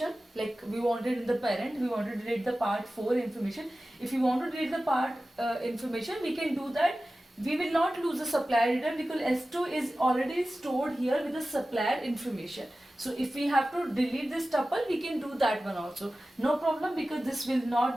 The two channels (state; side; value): normal; both; correlation 0.95